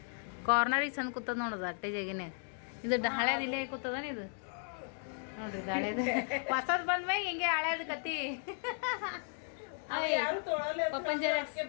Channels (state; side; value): silent; right; 54 dB below the other